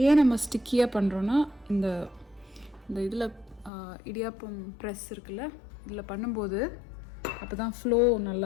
ஏன் நம்ம ஸ்டிக்கியாக பண்ணுறோன்னா, இந்த இதில் இடியாப்பம் ப்ரெஸ் இருக்குல்ல, இதில் பண்ணும்போது அப்போ தான் ஃப்ளோ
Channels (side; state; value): right; drops out; at 3.7 s